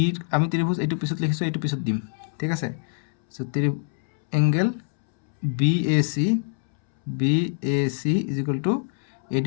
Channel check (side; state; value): right; silent; 62 dB below the other